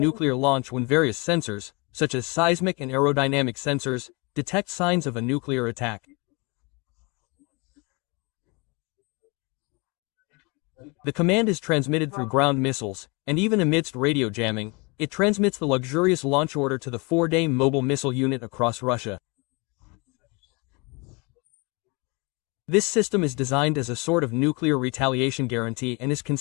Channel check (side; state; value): right; quieter; 28.9 dB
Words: launch when various sensors, such as seismic and aerodynamic sensors, detect signs of a nuclear attack. The command is transmitted through ground missiles, and even amidst radio jamming, it transmits the luxurious launch order to the 4-day mobile missile unit across Russia. This system is designed as a sort of nuclear retaliation guarantee and is